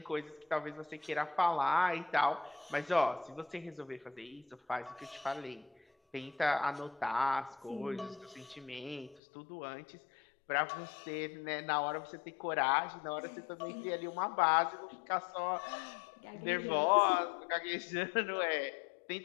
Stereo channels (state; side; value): drops out; right; at 9.2 s